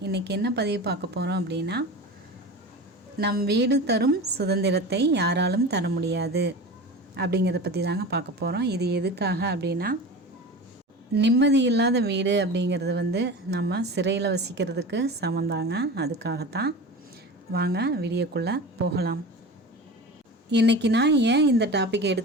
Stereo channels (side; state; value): both; normal; correlation 0.31